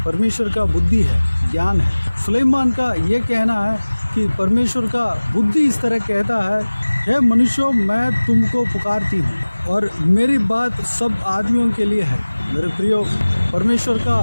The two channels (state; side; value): inverted; both; correlation -1.00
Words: परमेश्वर का बुद्धि है, ज्ञान है। सुलेमान का ये कहना है कि परमेश्वर का बुद्धि इस तरह कहता है, हे मनुष्यों, मैं तुमको पुकारती हूँ और मेरी बात सब आदमियों के लिए है। मेरे प्रियो, परमेश्वर का